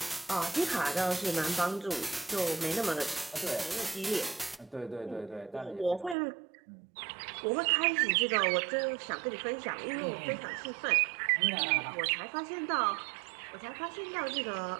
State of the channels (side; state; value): left; drops out; at 6.2 s